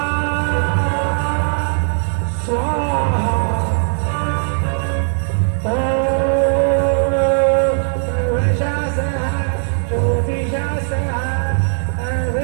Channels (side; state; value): left; silent; 63 dB below the other